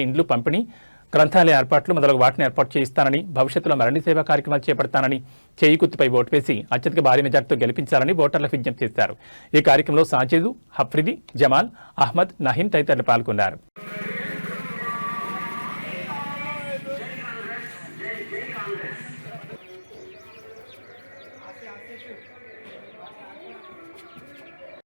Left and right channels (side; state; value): both; inverted; correlation -1.00